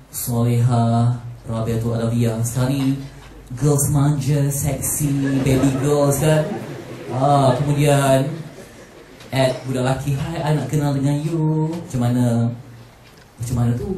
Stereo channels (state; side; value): identical; both; correlation 1.00